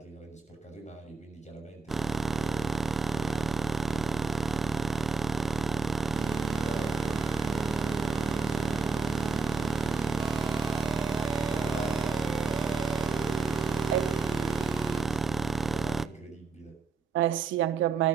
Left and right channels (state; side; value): quieter; left; 4.1 dB